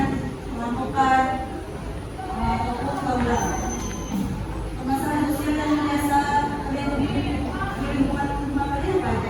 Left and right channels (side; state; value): both; identical; correlation 1.00